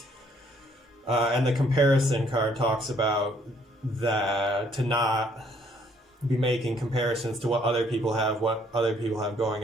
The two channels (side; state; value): both; normal; correlation 0.65